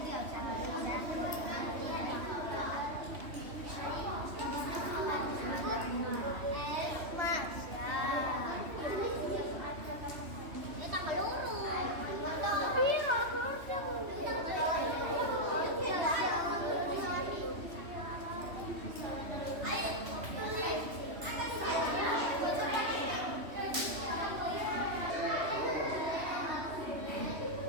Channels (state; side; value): late; left; 3.1 ms